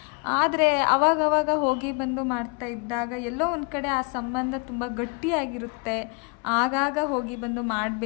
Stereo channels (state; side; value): quieter; right; 32.1 dB